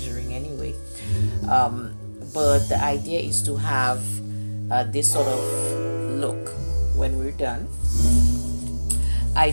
anyway. But the idea is to have this sort of look when we're done. I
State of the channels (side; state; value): both; inverted; correlation -1.00